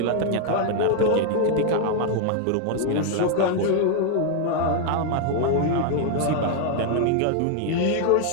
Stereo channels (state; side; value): different; both; correlation 0.00